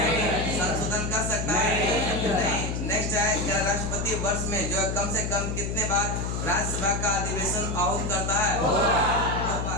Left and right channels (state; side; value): noise; left; hum, 2 dB below the sound